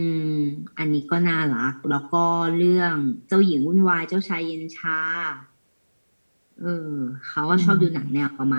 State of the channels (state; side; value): inverted; both; correlation -1.00